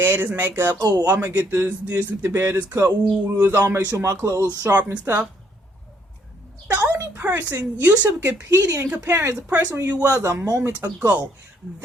makeup. Oh, I'm gonna get this with the baddest cut. Ooh, I'll make sure my clothes sharp and stuff. The only person you should be competing and comparing is the person you was a moment ago.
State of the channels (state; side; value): normal; both; correlation 0.68